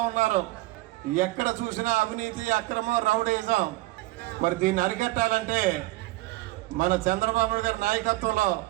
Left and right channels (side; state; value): left; quieter; 19.3 dB